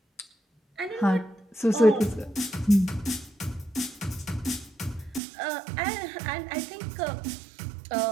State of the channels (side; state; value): left; drops out; at 5.2 s